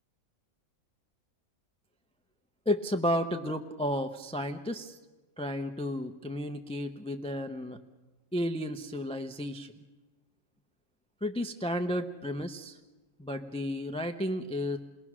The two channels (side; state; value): both; normal; correlation 0.56